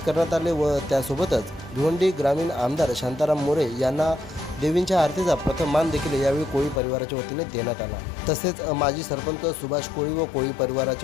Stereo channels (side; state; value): right; drops out; at 6.8 s